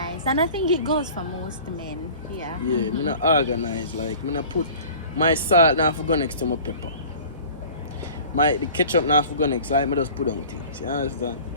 and I think it goes for most men. Yeah. Yeah, me not organized. Like me not put my salt now for go next to my pepper. The ketchup now for go next. Like me just put on things. You understand?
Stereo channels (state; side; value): inverted; both; correlation -0.44